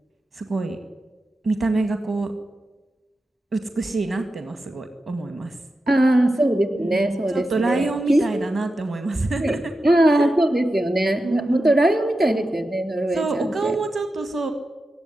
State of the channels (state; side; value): normal; both; correlation 0.91